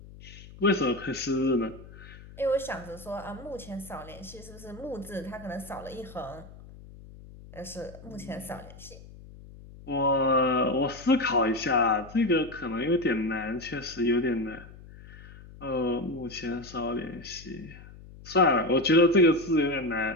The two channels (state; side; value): noise; left; hum, 18 dB below the sound